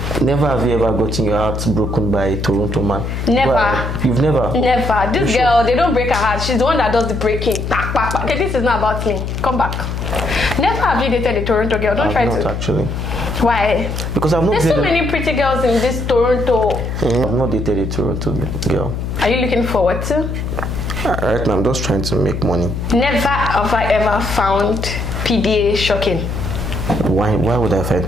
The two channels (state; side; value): noise; left; hum, 4 dB below the sound